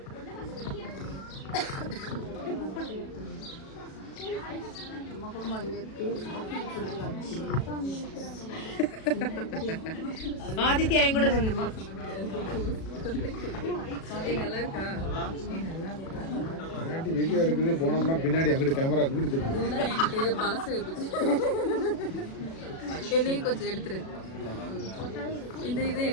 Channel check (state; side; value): late; right; 37 ms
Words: ஆதித்யா என் கூட வீடியோ எடுக்குது போனோம்னா பின்னாடி அங்கிட்டு கேமரா அங்கிட்டு எனக்கு பழசு என்னையும் கொஞ்சம் எடுத்துரு இந்த இதை